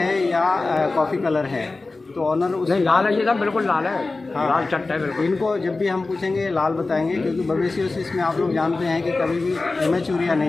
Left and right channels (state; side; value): quieter; right; 3.5 dB